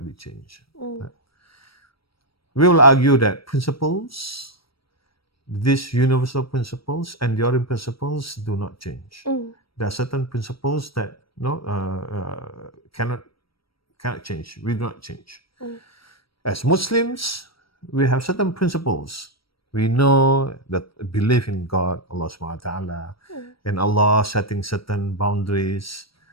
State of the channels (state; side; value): late; right; 0.75 ms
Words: be changed? Right? We will argue that principles, these universal principles, enduring principles do not change. There are certain principles that cannot change. We do not change. As Muslims, we have certain principles. We know that belief in God, Allah subhanahu wa ta'ala, and Allah setting certain boundaries,